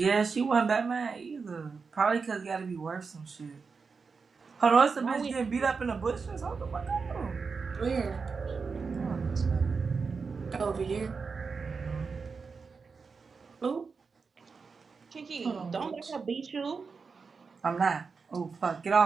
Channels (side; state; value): left; quieter; 5.0 dB